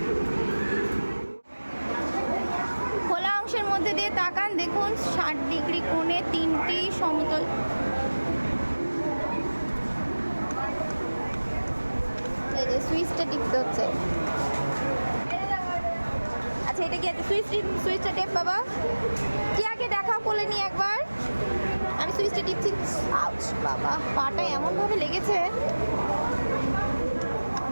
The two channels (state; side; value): inverted; both; correlation -1.00